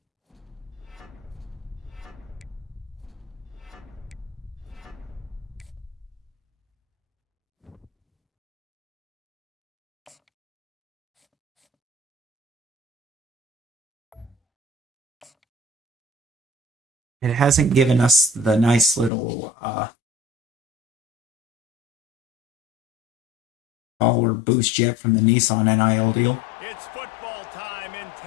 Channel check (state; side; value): drops out; right; at 19.1 s